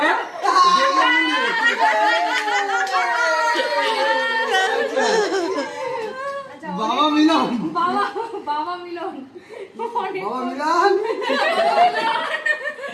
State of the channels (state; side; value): identical; both; correlation 1.00